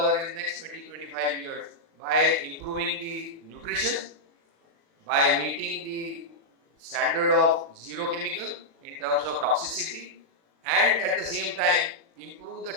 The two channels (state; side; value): late; left; 36 ms